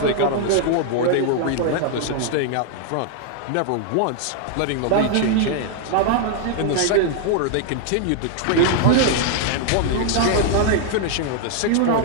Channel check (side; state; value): both; different; correlation 0.00